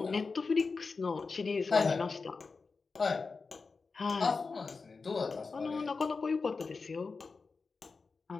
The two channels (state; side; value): quieter; right; 4.4 dB